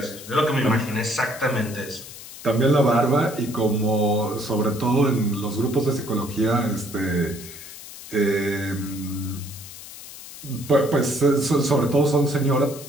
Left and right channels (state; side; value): noise; left; hiss, 14 dB below the sound